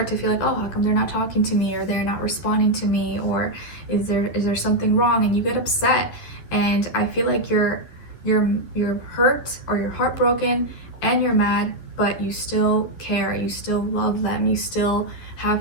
to feel like, oh, how come they're not talking to me, or they're not responding to me, or is there something wrong? And you get upset, and I feel like you're hurt, or you're heartbroken, and you're mad, but you still care, you still love them, you still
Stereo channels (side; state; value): right; late; 11 ms